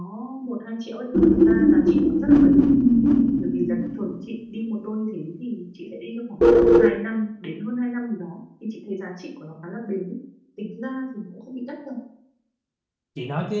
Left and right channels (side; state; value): both; identical; correlation 1.00